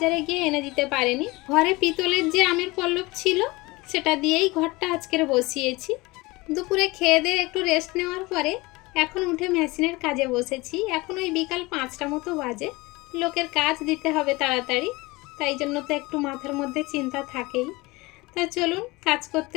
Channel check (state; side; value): quieter; right; 22.6 dB